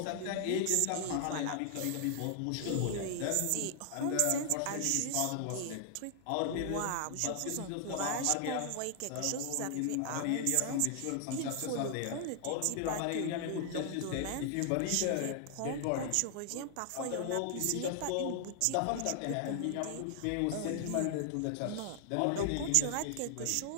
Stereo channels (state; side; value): different; both; correlation 0.00